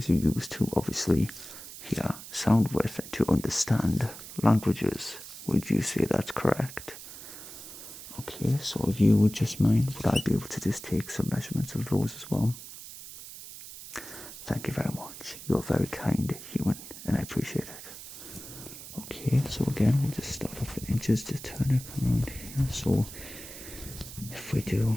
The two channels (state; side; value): noise; right; hiss, 13 dB below the sound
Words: you use to obviously hear sound with and to understand languages. Would you say that's correct? Okay, so if you would just mind, would I be able to just take some measurements of those as well? Thank you very much. You're very kind, human, and I appreciate it. Okay, so again, we'll just start off with inches, just turn it around here. So if we do